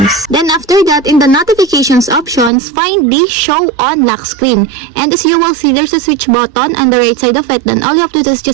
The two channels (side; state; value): left; drops out; at 2.5 s